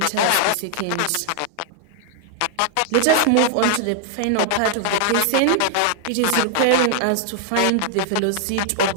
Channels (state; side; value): different; both; correlation 0.00